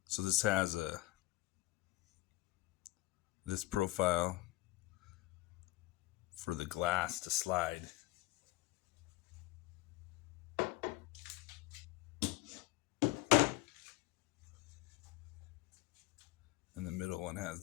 So this has this profile for the glass to slide. And the middle one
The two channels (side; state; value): right; quieter; 18.9 dB